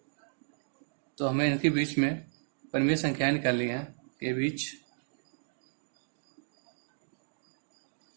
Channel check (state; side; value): silent; left; digital silence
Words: तो हमें इनके बीच में परिमेय संख्याएं निकालनी है। के बीच